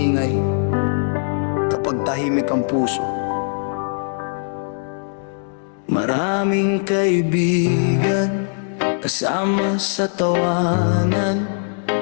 kapag tahimik ang puso. Maraming kaibigan kasama sa tawanan,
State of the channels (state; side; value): silent; right; digital silence